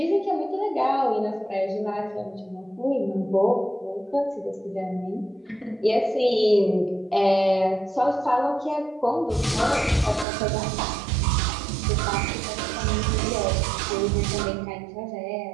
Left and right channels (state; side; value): drops out; left; at 10.2 s